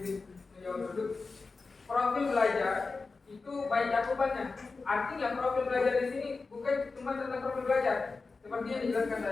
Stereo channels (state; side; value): quieter; right; 4.1 dB